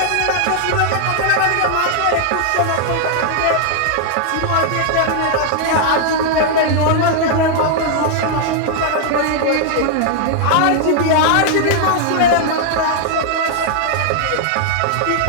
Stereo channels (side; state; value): both; different; correlation 0.00